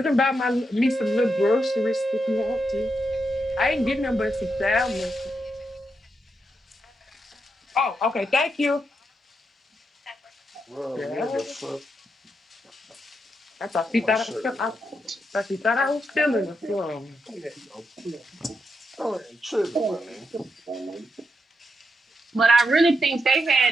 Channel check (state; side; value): normal; both; correlation 0.83